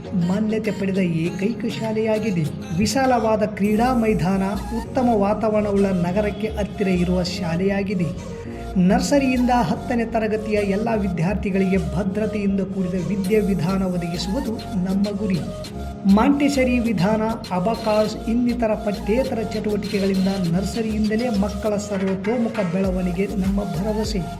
ಮಾನ್ಯತೆ ಪಡೆದ ಏಕೈಕ ಶಾಲೆಯಾಗಿದೆ. ವಿಶಾಲವಾದ ಕ್ರೀಡಾ ಮೈದಾನ, ಉತ್ತಮ ವಾತಾವರಣವುಳ್ಳ ನಗರಕ್ಕೆ ಹತ್ತಿರ ಇರುವ ಶಾಲೆಯಾಗಿದೆ. ನರ್ಸರಿಯಿಂದ 10ನೇ ತರಗತಿಯ ಎಲ್ಲ ವಿದ್ಯಾರ್ಥಿಗಳಿಗೆ ಭದ್ರತೆಯಿಂದ ಕೂಡಿದ ವಿದ್ಯಾವಿಧಾನ ಒದಗಿಸುವುದು ನಮ್ಮ ಗುರಿ. ಮಾಂಟೆಸರಿ ವಿಧಾನ, ಅಬಕಾಸ್ ಇನ್ನಿತರ ಪಠ್ಯೇತರ ಚಟುವಟಿಕೆಗಳಿಂದ ನರ್ಸರಿಯಿಂದಲೇ ಮಕ್ಕಳ ಸರ್ವತೋಮುಖ ಬೆಳವಣಿಗೆ ನಮ್ಮ ಭರವಸೆ.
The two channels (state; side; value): identical; both; correlation 1.00